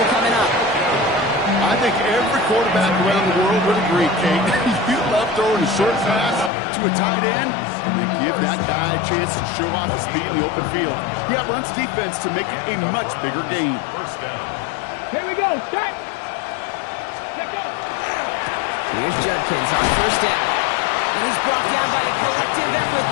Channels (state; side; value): drops out; right; at 6.5 s